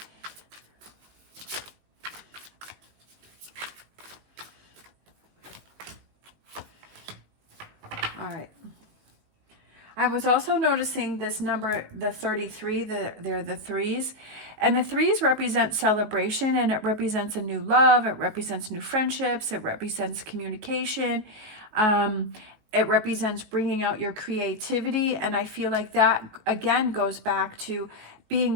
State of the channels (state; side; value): late; left; 19 ms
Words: All right. I was also noticing this number, the 33, they're the threes. And the threes represent celebration, and it represents a new love. It represents new friendships. It represents communication. It represents bringing out your creativity. And I feel like that, again, goes back to